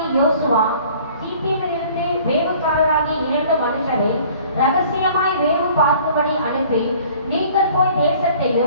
யோசுவா சீத்தியமிலிருந்து வேவுக்காரராகிய 2 மனுஷரை ரகசியமாய் வேவு பார்க்கும்படி அனுப்பி, நீங்கள் போய்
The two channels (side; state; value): both; inverted; correlation -0.52